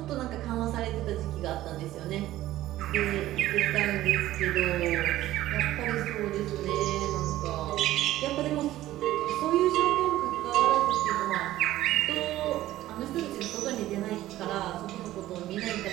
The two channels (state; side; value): quieter; left; 14.9 dB